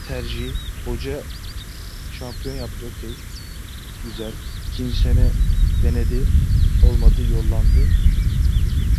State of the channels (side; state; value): both; identical; correlation 1.00